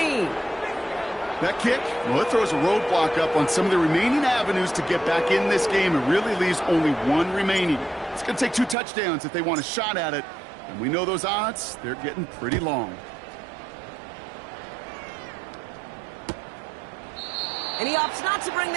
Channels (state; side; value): drops out; left; at 8.8 s